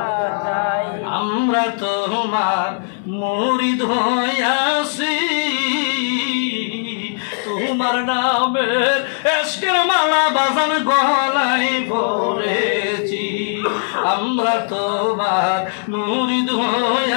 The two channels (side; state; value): right; silent; 61 dB below the other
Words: চাই। আমরা তোমার মুরিদ হইয়াছি, তোমার নামের এশকের মালা বাজান গলায় পড়েছি। আমরা তোমার মুরিদ